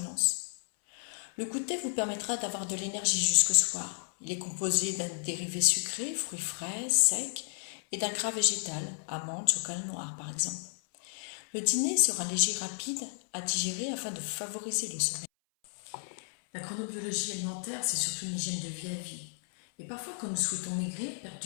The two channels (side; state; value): right; silent; 56 dB below the other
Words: Le goûter vous permettra d'avoir de l'énergie jusqu'au soir. Il est composé d'un dérivé sucré, fruits frais, secs, et d'un gras végétal, amandes, chocolat noir par exemple. Le dîner sera léger, rapide à digérer afin de favoriser le sommeil. La chronobiologie alimentaire, c'est surtout une hygiène de vie à vie. Et parfois, quand nous souhaitons maigrir, perdre